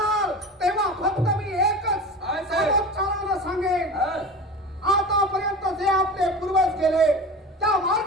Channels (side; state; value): both; normal; correlation 0.32